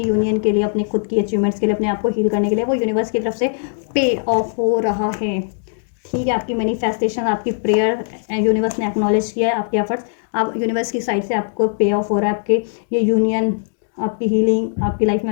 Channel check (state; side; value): silent; right; digital silence